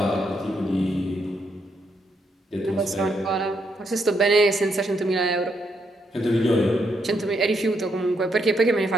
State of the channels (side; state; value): both; normal; correlation 0.77